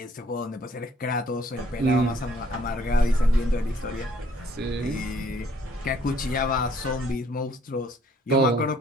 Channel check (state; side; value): normal; both; correlation 0.63